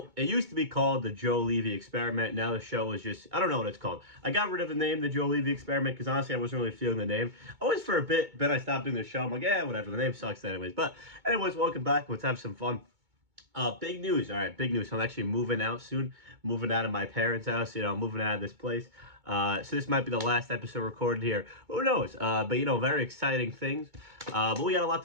it used to be called the Joe Levy Experiment. Now the show is just I don't know what it's called. I got rid of the name the Joe Levy Experiment because honestly I wasn't really feeling the name. Always for a bit, then I stopped doing the show. I'm like, yeah, whatever. The name sucks anyways. But anyways, welcome back. Let's have some fun. Big news. All right, big news. I'm actually moving out soon. Moving out of my parents' house. Moving out of this place. So this might be the last episode recorded here. Who knows? But very exciting things. But we got a lot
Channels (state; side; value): late; left; 2.2 ms